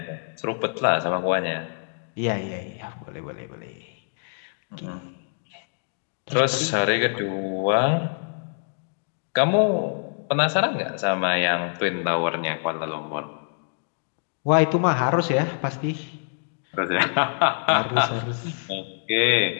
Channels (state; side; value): silent; right; digital silence